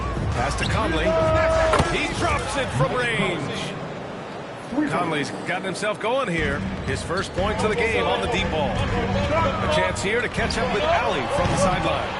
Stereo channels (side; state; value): both; identical; correlation 1.00